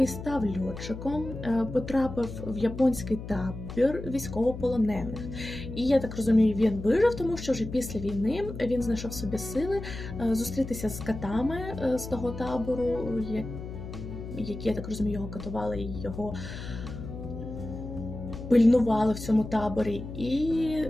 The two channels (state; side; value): noise; left; hum, 10 dB below the sound